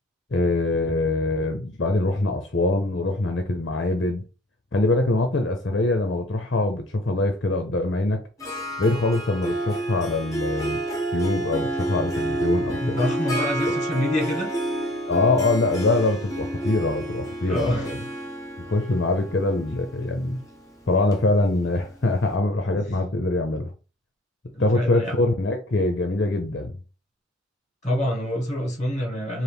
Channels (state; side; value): normal; both; correlation 0.50